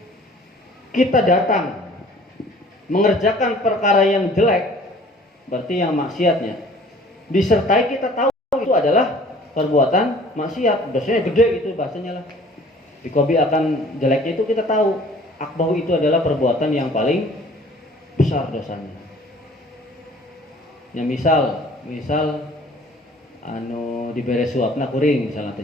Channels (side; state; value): both; normal; correlation 0.52